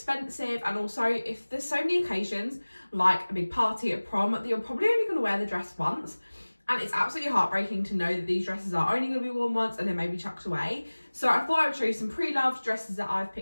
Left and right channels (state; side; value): inverted; both; correlation -1.00